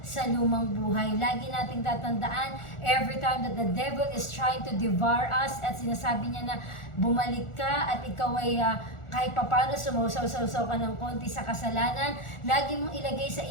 sa lumang buhay. Lagi nating tatandaan, every time that the devil is trying to devour us at sinasabi niya na bumalik ka at ikaw ay kahit papano sumusaw-saw ka ng konti sa kasalanan, lagi mong ilagay sa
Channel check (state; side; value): late; right; 1.4 ms